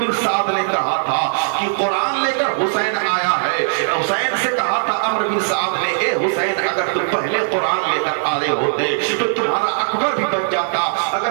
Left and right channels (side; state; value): left; silent; digital silence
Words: بن سعد نے کہا تھا کہ قرآن لے کر حسین آیا ہے، حسین سے کہا تھا عمرو بن سعد نے اے حسین اگر تم پہلے قرآن لے کر آئے ہوتے تو تمہارا اکبر بھی بچ جاتا،